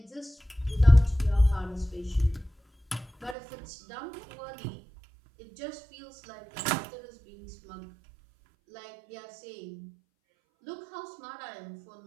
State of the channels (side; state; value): left; drops out; at 3.4 s